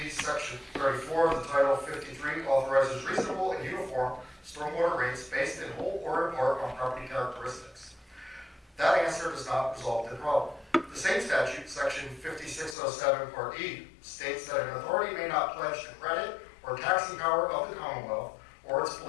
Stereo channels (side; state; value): right; drops out; at 12.8 s